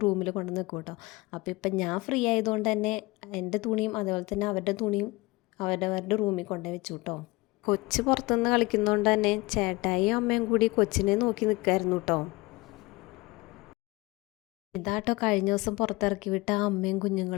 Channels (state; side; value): quieter; right; 22.8 dB